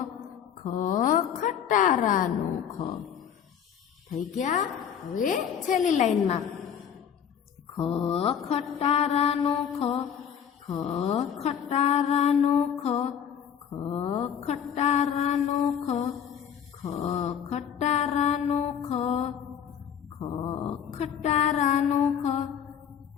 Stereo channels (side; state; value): right; quieter; 8.4 dB